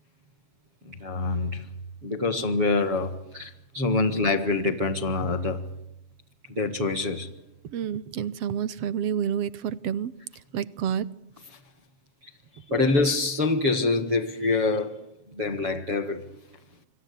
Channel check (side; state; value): left; late; 6.9 ms